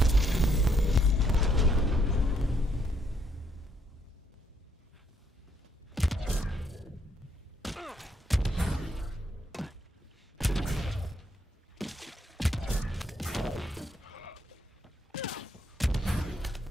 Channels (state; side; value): normal; both; correlation 0.72